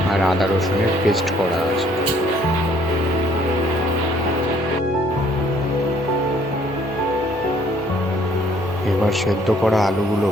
আর আদা রসুনের পেস্ট করা আছে। এবার সেদ্ধ করা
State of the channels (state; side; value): normal; both; correlation 0.62